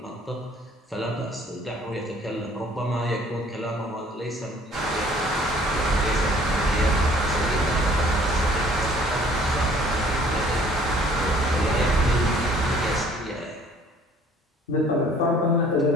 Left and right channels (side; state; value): both; normal; correlation 0.55